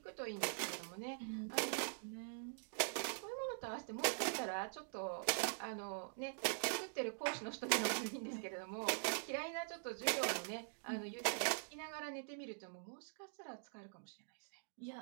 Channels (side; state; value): left; silent; digital silence